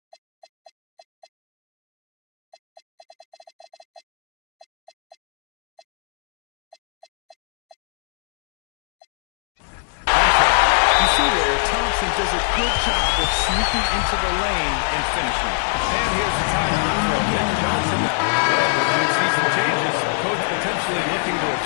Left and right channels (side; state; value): right; drops out; at 7.8 s